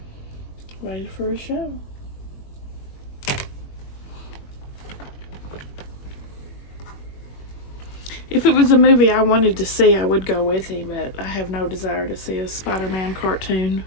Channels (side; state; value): right; late; 21 ms